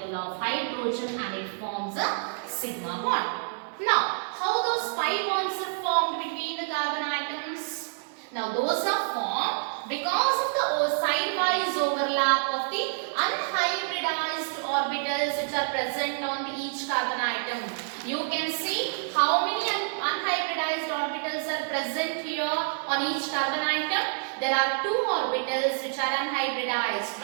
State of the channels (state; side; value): silent; left; digital silence